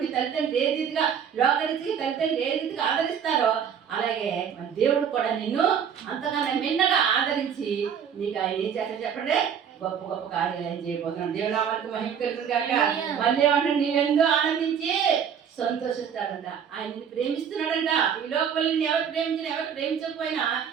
నీ తల్లిదండ్రులు ఏ రీతిగా లోకరీతికి తల్లిదండ్రులు ఏ రీతిగా ఆదరిస్తారో, అలాగే మన దేవుడు కూడా నిన్ను అంతకన్నా మిన్నగా ఆదరించి నీకు ఆయన ఏం చేస్తాడు చెప్పండి? గొప్ప గొప్ప కార్యాలు ఏం చేయబోతున్నాడు. దేవునామానికి మహిమ కలుగును గాక. మళ్ళీ ఏమంటాడు? నీవెందో ఆనందించి సంతోషిస్తాడంట. ఆయన నిన్ను ప్రేమిస్తున్నాడంట. ఈ లోకంలో నిన్ను ఎవరు ప్రేమించినా, ఎవరు ప్రేమించకపోయినా,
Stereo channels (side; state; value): left; quieter; 7.8 dB